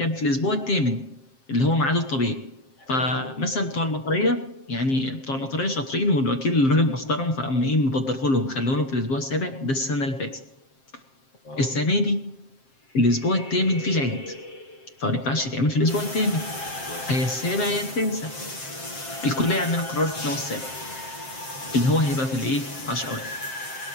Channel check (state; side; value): late; right; 7.5 ms